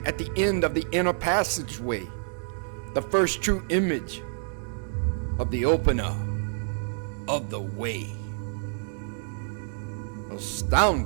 at the end of the inner passageway, the first true image of the opener of the way.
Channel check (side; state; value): left; silent; 59 dB below the other